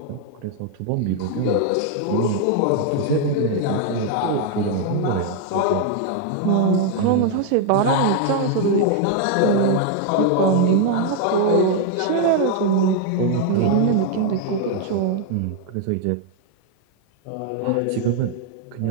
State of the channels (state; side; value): different; both; correlation 0.00